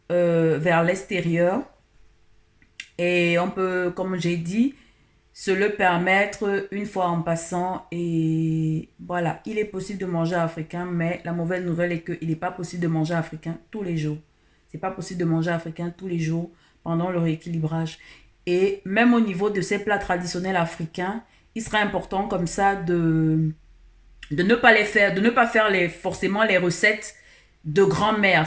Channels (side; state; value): both; identical; correlation 1.00